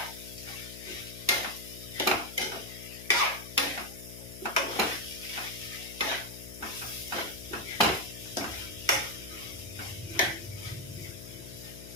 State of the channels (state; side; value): noise; left; hum, 12 dB below the sound